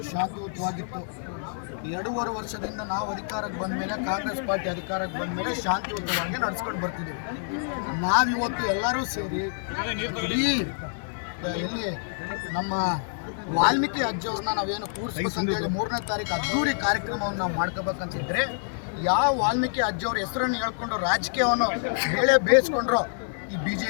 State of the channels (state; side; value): silent; right; digital silence